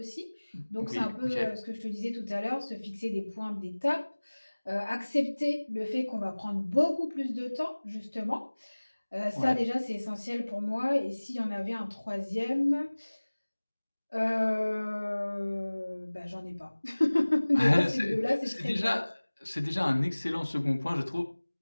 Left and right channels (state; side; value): inverted; both; correlation -1.00